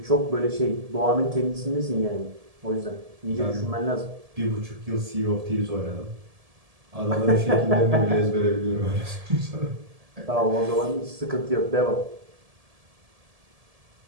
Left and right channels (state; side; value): late; left; 1.7 ms